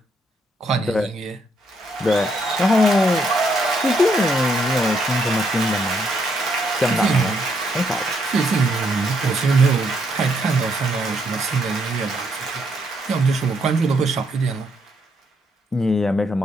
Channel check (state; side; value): normal; both; correlation 0.74